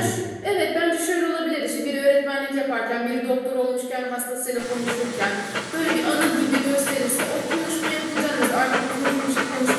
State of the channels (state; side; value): identical; both; correlation 1.00